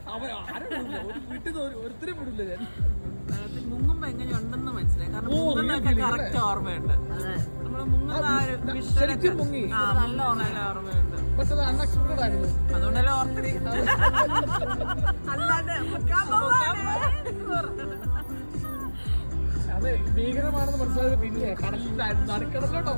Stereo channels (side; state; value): both; inverted; correlation -1.00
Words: അവൻ ആരും വിടില്ല, ഒരു വീട്ടിൽ നിന്ന് ഒരുത്തരും വിടില്ല ഞാൻ. മുങ്ങുമ്പോ എങ്ങനെയുണ്ടെന്ന് മനസ്സിലായി. കാരണം കറക്റ്റ് ഓർമ്മയുണ്ട്. നമ്മള് മുങ്ങുന്ന ശരിക്കും മുങ്ങി, നല്ല ഓർമ്മയുണ്ട്. പക്ഷെ അത് അൺഎക്സ്പെക്ടഡ് ആയിരുന്നു. അതുകൊണ്ടല്ലേ ഓർക്കണേ. അല്ലാതെ അത് ഭീകരമാണെന്ന് മനസ്സിലായത് പിന്നെ കടലിന്റെ നടുക്കടലിലോട്ടോ